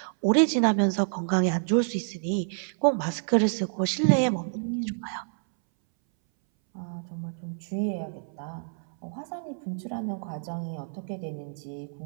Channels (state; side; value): silent; left; 59 dB below the other